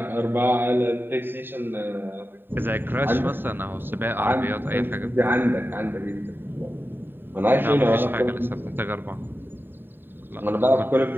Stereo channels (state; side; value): late; left; 0.096 ms